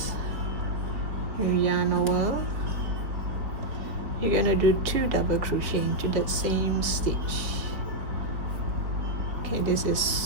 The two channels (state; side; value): late; left; 4.2 ms